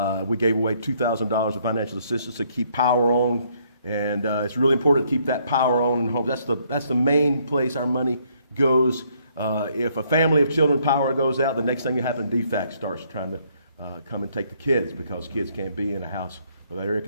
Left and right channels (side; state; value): both; inverted; correlation -0.68